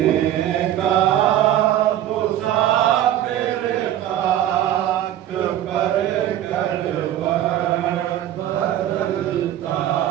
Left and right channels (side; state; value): left; quieter; 12.1 dB